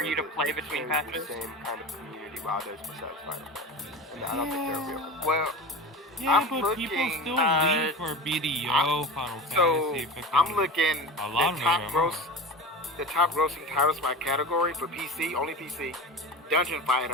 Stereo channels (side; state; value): both; normal; correlation 0.30